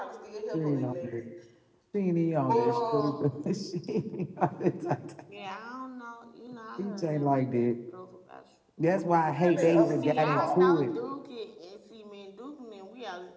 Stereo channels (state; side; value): identical; both; correlation 1.00